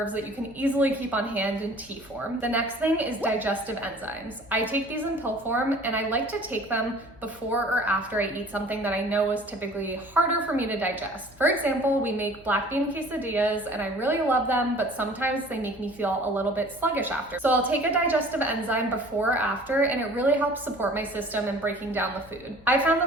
that you can easily keep on hand in tea form. The next thing is digestive enzymes. I take these in pill form, and I like to take them before or after I eat something that I know is typically harder for me to digest. For example, we make black bean quesadillas, and I really love them, but sometimes they make me feel a little bit sluggish after. So I'll take a digestive enzyme before or after, and it really helps support my system in breaking down the food. I found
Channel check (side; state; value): left; noise; hum, 25 dB below the sound